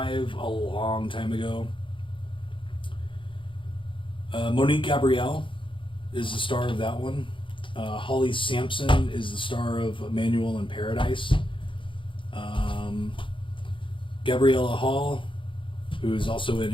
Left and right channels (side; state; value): right; late; 0.25 ms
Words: a long time ago. Monique Gabrielle is the star of that one. Holly Sampson is the star of Emmanuel in Paradise. Gabriella Hall, who is also in